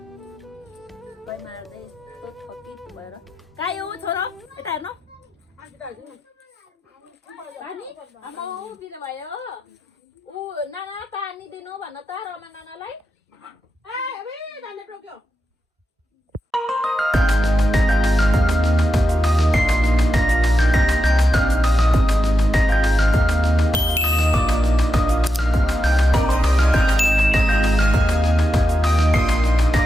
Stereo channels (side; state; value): both; normal; correlation 0.88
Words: गइ मार्दै यस्तो थकित भएर खायो छोरो यता हेर्नु पानी आमा बिदा भयो। ऊ नाना पानी दिनु भन त रमा नानालाई।